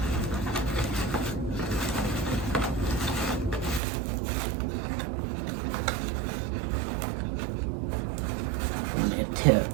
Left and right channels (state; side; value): drops out; left; at 3.8 s